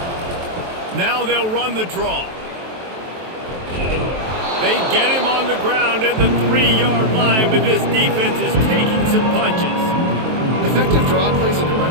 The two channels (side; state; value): left; late; 23 ms